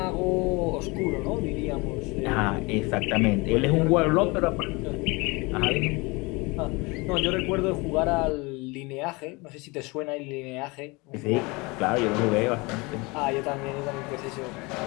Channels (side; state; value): right; quieter; 25.9 dB